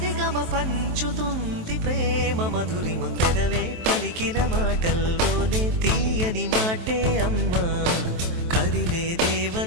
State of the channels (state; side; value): late; left; 23 ms